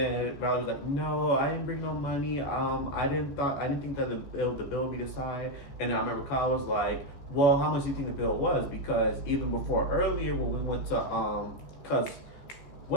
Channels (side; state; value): right; late; 14 ms